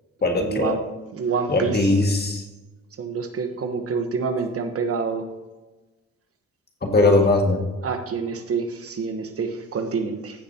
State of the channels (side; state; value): both; normal; correlation 0.35